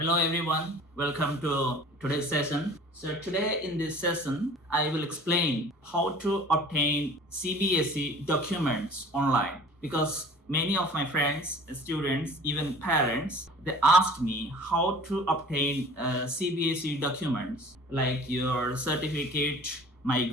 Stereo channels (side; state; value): both; normal; correlation 0.45